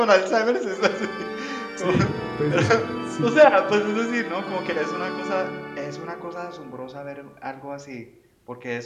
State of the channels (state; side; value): identical; both; correlation 1.00